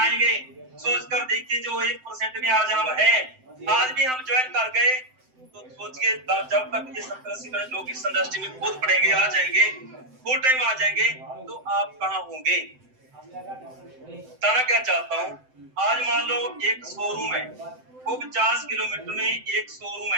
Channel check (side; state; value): left; late; 7.8 ms